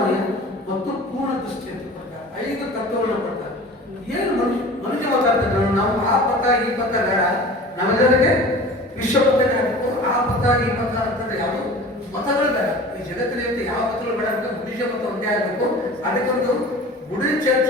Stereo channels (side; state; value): both; normal; correlation 0.40